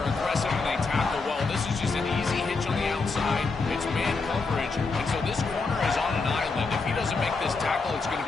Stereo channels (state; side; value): quieter; right; 4.1 dB